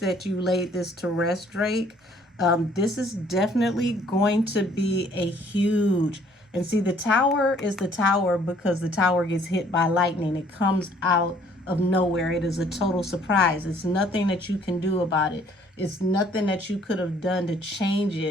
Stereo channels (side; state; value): both; normal; correlation 0.60